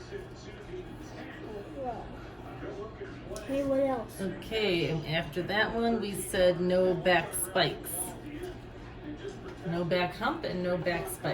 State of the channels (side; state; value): both; identical; correlation 1.00